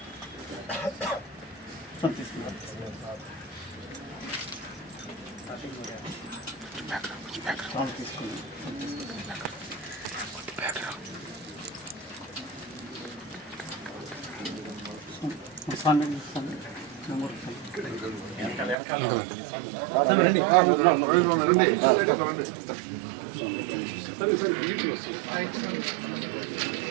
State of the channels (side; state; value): left; drops out; at 18.8 s